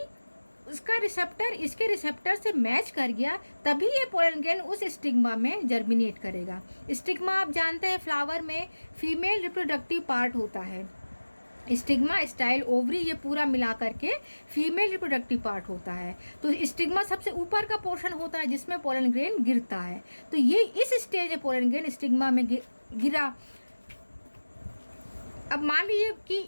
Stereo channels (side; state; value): both; inverted; correlation -1.00